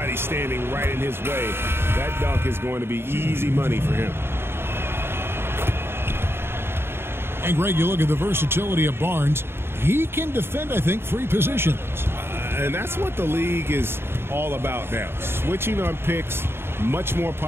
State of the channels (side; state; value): left; late; 0.11 ms